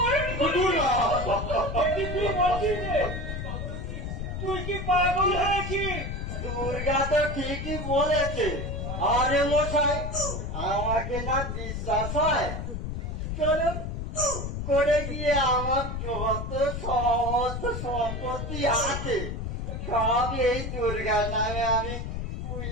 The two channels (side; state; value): left; noise; rumble, 4 dB below the sound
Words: তুই কি পাগল হয়েছিস? দুর্গা তো ঠিকই বলেছে। আরে মশাই, আমাকে না বিশ্বাস হয়, চলুন করে গিয়ে আমার যত সমস্ত সম্পত্তি আছে সব এই দুর্গার নামে আমি